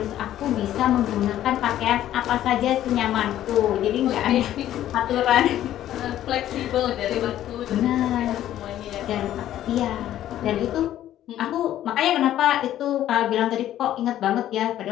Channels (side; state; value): right; quieter; 12.4 dB